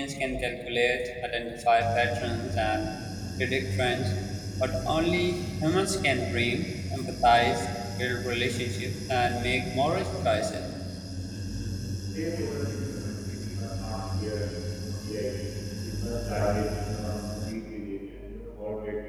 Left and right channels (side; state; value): both; identical; correlation 1.00